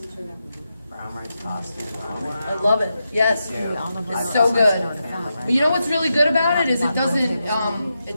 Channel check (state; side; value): inverted; both; correlation -0.87